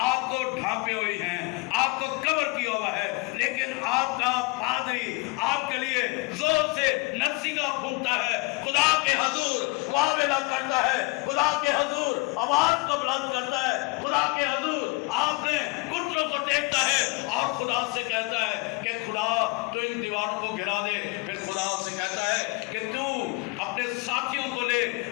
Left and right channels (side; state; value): right; quieter; 26.8 dB